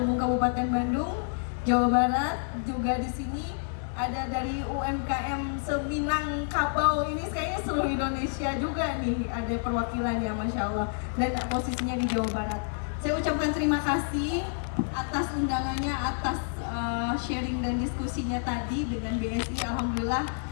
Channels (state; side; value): silent; right; digital silence